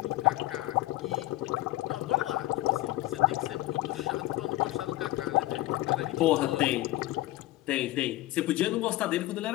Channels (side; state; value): right; quieter; 17.3 dB